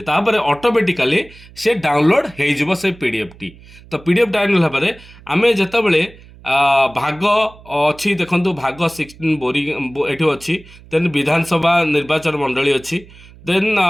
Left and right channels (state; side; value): noise; right; hum, 22 dB below the sound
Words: ତାପରେ ଅଟୋମେଟିକାଲି ସେ ଡାଉନଲୋଡ଼ ହେଇଯିବ ସେ ପିଡ଼ିଏଫ୍ଟି। ତ ପିଡ଼ିଏଫ୍ ଡାଉନଲୋଡ଼ ହେବା ପରେ ଆମେ ଯେତେବେଳେ ଭାଗ ଅଛି, ଦେଖନ୍ତୁ ଭାଗ 16 ଏଠି ଅଛି। ଦେନ୍ ବିଧାନସଭା ନିର୍ବାଚନ ମଣ୍ଡଳୀ ଅଛି। ଦେନ୍